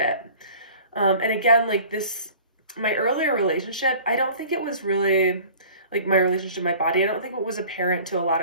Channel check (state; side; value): inverted; both; correlation -0.46